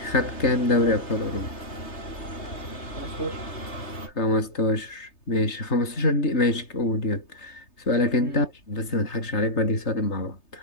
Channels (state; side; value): late; right; 3.3 ms